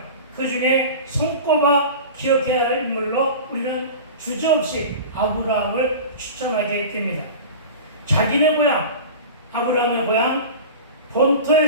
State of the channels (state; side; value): inverted; both; correlation -0.33